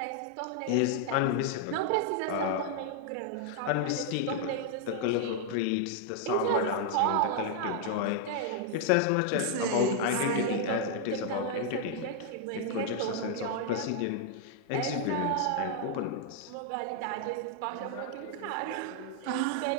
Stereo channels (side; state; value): both; different; correlation 0.00